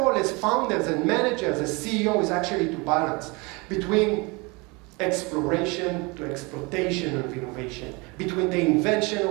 as founders and managers, as CEO, is actually to balance between exploration to exploitation of innovation, between the invention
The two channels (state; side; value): quieter; left; 27.3 dB